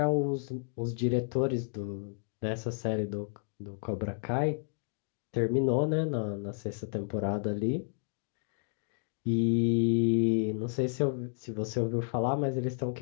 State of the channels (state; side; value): silent; right; 57 dB below the other